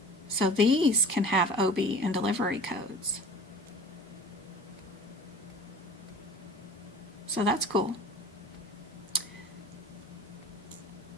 So these can have OB and delivery codes. So that's cool.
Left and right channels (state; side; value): normal; both; correlation 0.43